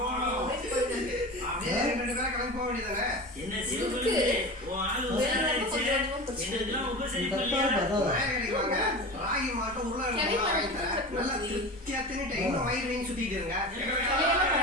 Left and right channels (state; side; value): normal; both; correlation 0.30